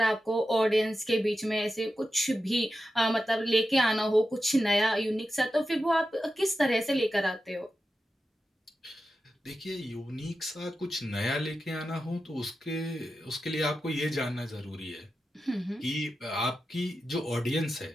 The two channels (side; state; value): both; normal; correlation 0.91